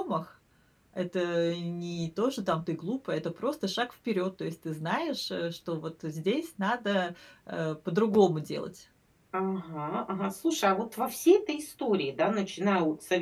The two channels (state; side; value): identical; both; correlation 1.00